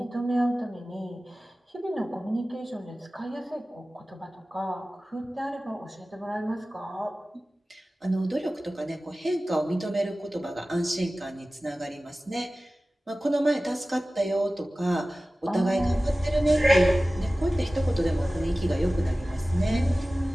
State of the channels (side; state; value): both; normal; correlation 0.97